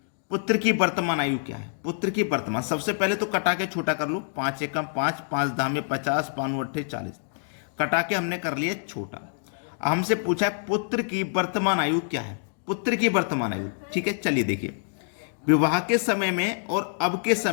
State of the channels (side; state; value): right; silent; digital silence